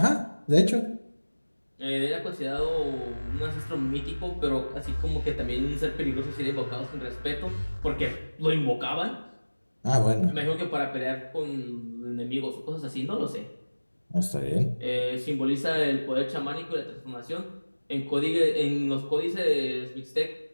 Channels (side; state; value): both; inverted; correlation -1.00